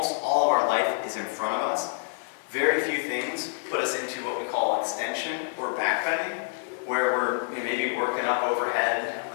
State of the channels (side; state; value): right; silent; digital silence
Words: all of our life is in front of us. Very few things put us into what we call extension or back bending, where we're maybe working up overhead,